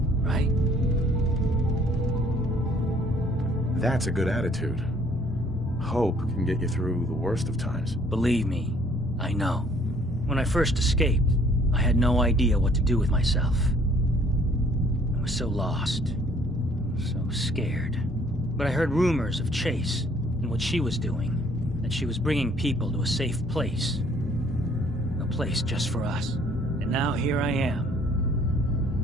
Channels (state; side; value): normal; both; correlation 0.60